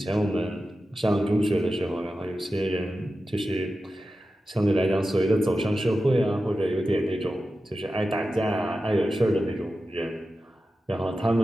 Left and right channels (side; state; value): both; normal; correlation 0.92